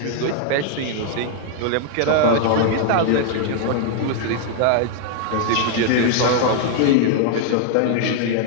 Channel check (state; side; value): different; both; correlation 0.00